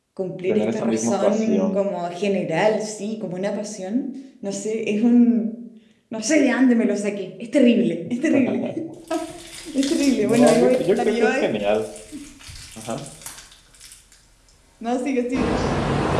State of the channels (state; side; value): identical; both; correlation 1.00